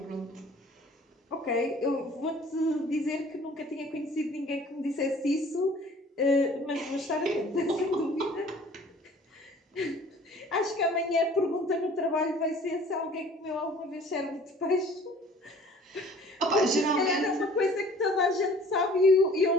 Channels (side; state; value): both; normal; correlation 0.50